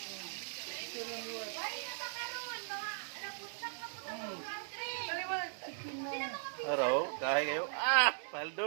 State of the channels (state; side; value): silent; left; digital silence